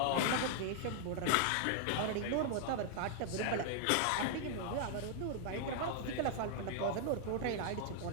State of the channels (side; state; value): both; different; correlation 0.00